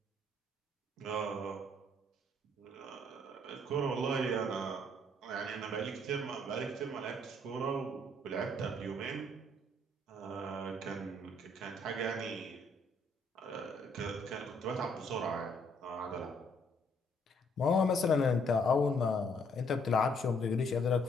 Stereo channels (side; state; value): both; normal; correlation 0.67